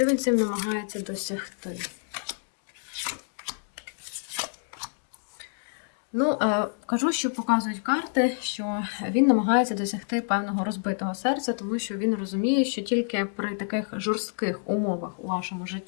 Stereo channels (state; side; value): silent; right; 59 dB below the other